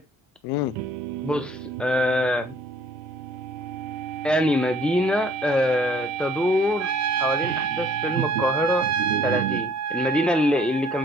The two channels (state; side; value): normal; both; correlation 0.57